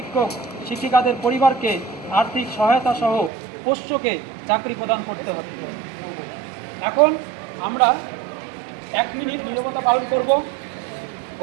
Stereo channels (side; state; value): left; drops out; at 3.3 s